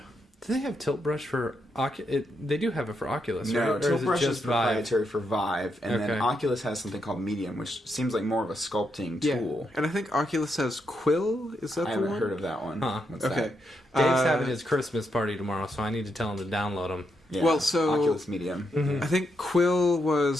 Do they have tilt brush for Oculus? They do have it for Oculus, right? No, Or tilt is it brush just is proprietary for Vive, and then Oculus has something called Medium, which seems like more of a sculpting tool. And I think Oculus has Quill. Is that the one? I haven't heard of that one. Huh. What's okay. that? Dave's having his Christmas party tomorrow, so I need to tell him to download them. Yeah. Well, so Oculus Medium. I think Quill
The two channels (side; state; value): both; normal; correlation 0.81